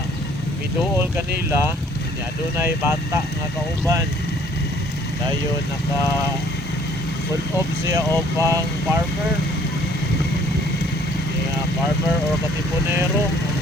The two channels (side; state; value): both; normal; correlation 0.58